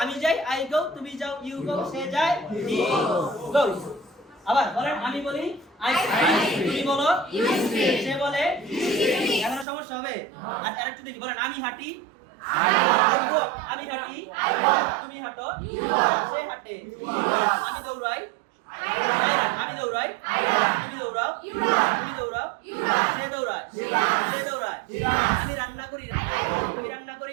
আমি যাই আই গো তুমি যাও ইউ গো সে যায় হি গোস আবার বলেন আমি বলি আই স্পিক তুমি বলো ইউ স্পিক সে বলে হি স্পিক এখানে সমস্যা হবে আর আরেকটু দেখি বলেন আমি হাঁটি আমি হাঁটি তুমি হাঁটো সে হাঁটে আমি দৌড়াই আমি দৌড়াই তুমি দৌড়াও তুমি দৌড়াও সে দৌড়ায় সে দৌড়ায় আমি রান্না করি তুমি রান্না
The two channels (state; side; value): drops out; left; at 9.7 s